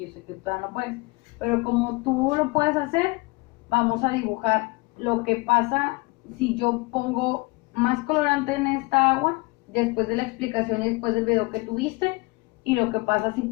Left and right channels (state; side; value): quieter; right; 26.0 dB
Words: sé que tú todavía no puedes, pero como tú lo puedes hacer, vamos a dibujar lo que pasa si yo pongo más colorante en esta agua, después de la explicación y después del video que tuviste, y lo que pasa si